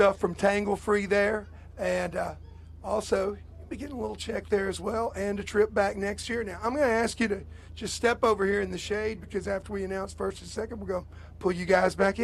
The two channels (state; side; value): identical; both; correlation 1.00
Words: from Tangle Free there, and also you'll be getting a little check there as well, and a trip back next year. Now, I'm going to ask you to just step over here in the shade because after we announce first and second, we're going to pull you guys back